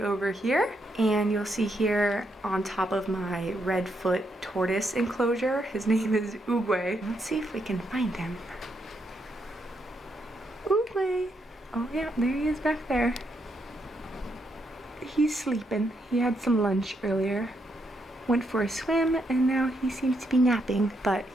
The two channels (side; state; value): both; normal; correlation 0.78